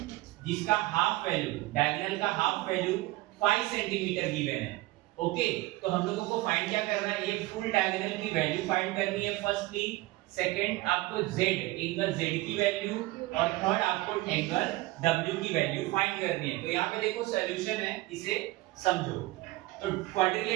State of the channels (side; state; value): left; quieter; 19.8 dB